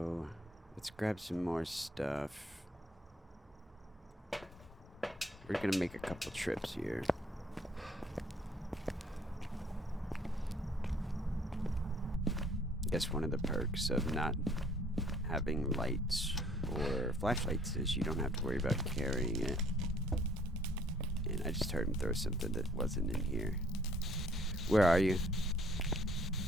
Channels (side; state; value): both; normal; correlation 0.59